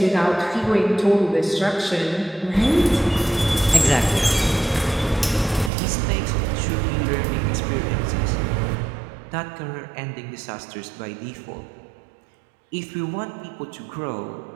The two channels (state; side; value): drops out; left; at 5.7 s